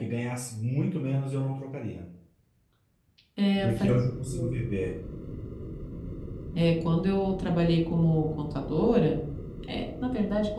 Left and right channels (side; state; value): both; identical; correlation 1.00